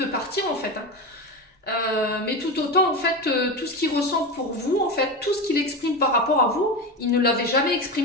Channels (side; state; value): both; normal; correlation 0.21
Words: partir en fait. Hein. Mais tout autant, en fait, tout ce qu'il ressent pour vous, en fait, tout ce qu'il exprime par rapport à vous, il ne l'avait jamais